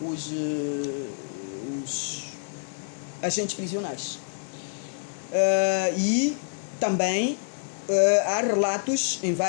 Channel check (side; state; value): right; silent; 60 dB below the other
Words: os agentes prisionais. E também há relatos em